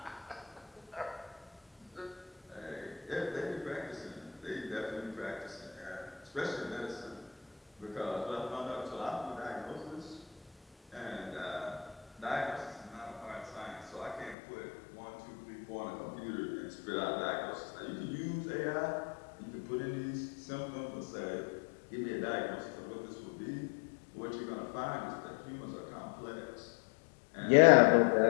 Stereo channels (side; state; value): right; drops out; at 14.4 s